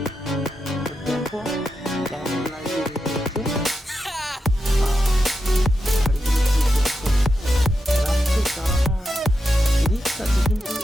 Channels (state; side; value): normal; both; correlation 0.87